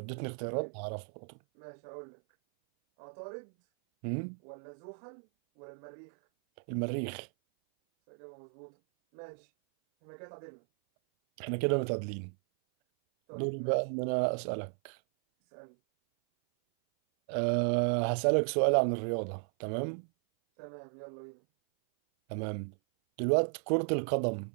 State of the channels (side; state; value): left; silent; 55 dB below the other